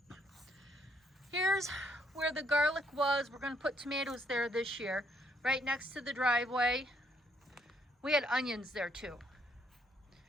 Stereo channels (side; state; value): both; normal; correlation 0.71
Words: Here's where the garlic was. We're going to put tomatoes there this year, right next to the driveway. We had onions there too.